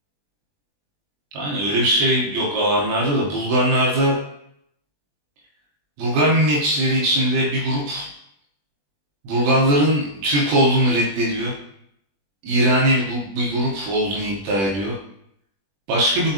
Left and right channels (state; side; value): late; left; 20 ms